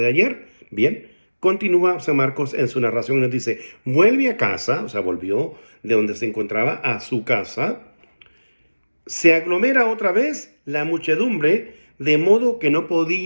ayer. Bien, continúa San Marcos en su narración y nos dice, vuelve a casa, o sea, volvió de donde se encontraba a su casa, se aglomera otra vez la muchedumbre, de modo que no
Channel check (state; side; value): inverted; both; correlation -1.00